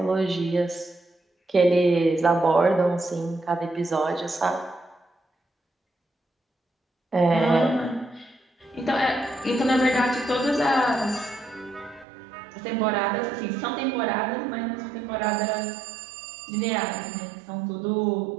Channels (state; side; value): drops out; left; at 12.1 s